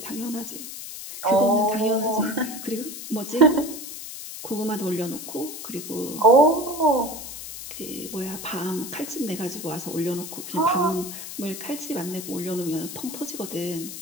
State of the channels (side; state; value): left; noise; hiss, 10 dB below the sound